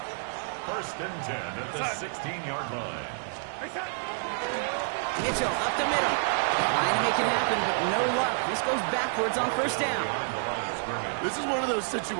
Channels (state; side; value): silent; left; 58 dB below the other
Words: First and 10 at the 16-yard line. Mitchell up the middle. Trying to make it happen, but no luck. This goes backwards on first down. This is one of those